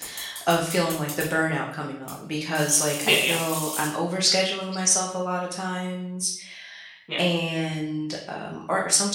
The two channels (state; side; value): identical; both; correlation 1.00